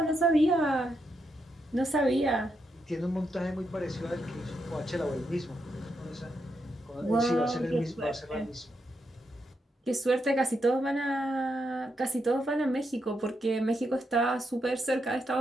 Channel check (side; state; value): both; normal; correlation 0.82